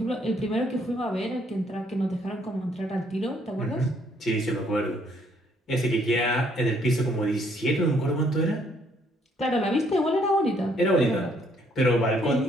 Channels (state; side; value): normal; both; correlation 0.67